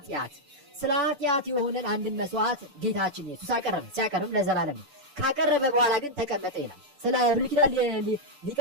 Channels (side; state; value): left; late; 6.9 ms